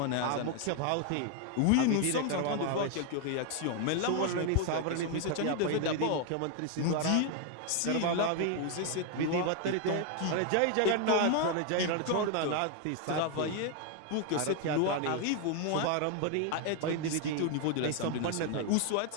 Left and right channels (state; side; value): different; both; correlation 0.01